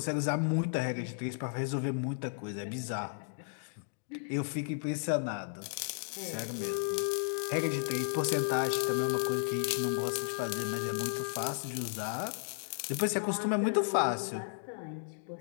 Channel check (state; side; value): silent; right; digital silence